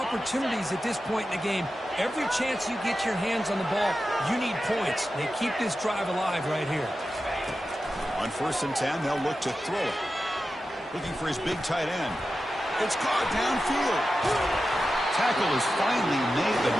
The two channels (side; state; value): both; normal; correlation 0.92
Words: at this point in the game. Every chance you get your hands on the ball, you need points. They keep this drive alive right here. On 1st and 10, they'll look to throw it. Looking for his big tight end. It's caught downfield. Tackle is finally made, but